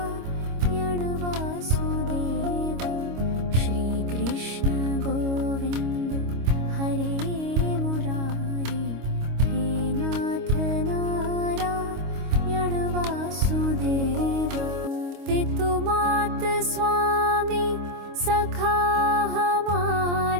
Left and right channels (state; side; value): late; left; 25 ms